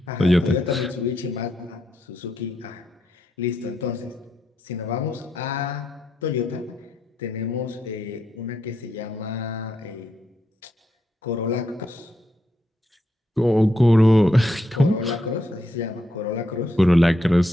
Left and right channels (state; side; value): normal; both; correlation 0.80